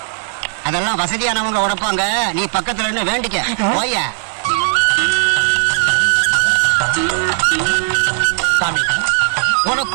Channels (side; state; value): left; silent; digital silence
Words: அதெல்லாம் வசதியானவங்க உடைப்பாங்க. நீ பக்கத்துல இருந்து வேண்டிக்க போய. சாமி உனக்கு